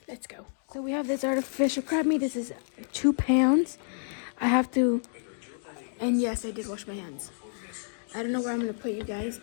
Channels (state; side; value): silent; right; digital silence